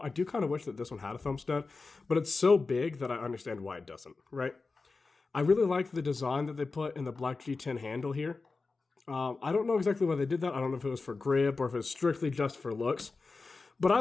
do kind of wish that this one had a thumb stud, but it's so big that I understand why it doesn't, right? I really like the design that they put in the black G10 handle here. I don't know exactly why they did that. I don't know if it was for grip or if it's strictly just for looks. But I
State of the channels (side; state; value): right; quieter; 4.0 dB